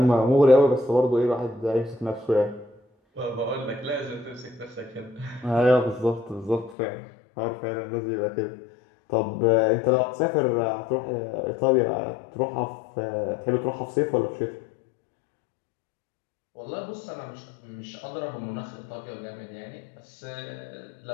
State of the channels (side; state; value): right; drops out; at 6.8 s